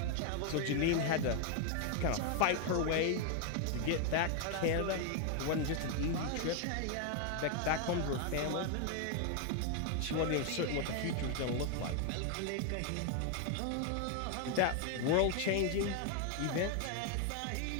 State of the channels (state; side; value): different; both; correlation 0.00